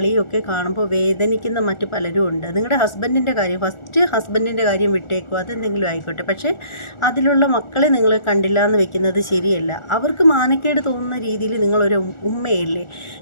ഒക്കെ കാണുമ്പോൾ വേദനിക്കുന്ന മറ്റു പലരും ഉണ്ട്. നിങ്ങളുടെ ഹസ്ബൻഡിൻ്റെ കാര്യം, ഫസ്റ്റ് ഹസ്ബൻഡിൻ്റെ കാര്യം വിട്ടേക്കുക, അതെന്തെങ്കിലും ആയിക്കോട്ടെ. പക്ഷേ അതിലുള്ള മക്കളെ നിങ്ങൾ കണ്ടില്ല എന്ന് വെക്കുന്നത് ശരിയല്ല. അവർക്ക് മാനക്കേട് തോന്നുന്ന രീതിയിൽ നിങ്ങളൊരു ഉമ്മയല്ലേ,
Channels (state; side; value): late; right; 1.4 ms